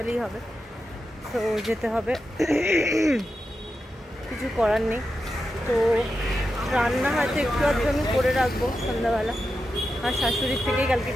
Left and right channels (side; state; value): both; normal; correlation 0.89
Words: হবে। তো যেতে হবে, কিছু করার নেই। তো রান্না হয়তো একটু আধটু আমি করে রাখবো সন্ধ্যাবেলা, আর শাশুড়ির থেকেই কালকে